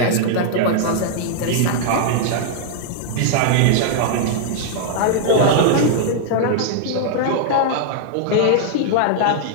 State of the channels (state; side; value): different; both; correlation -0.01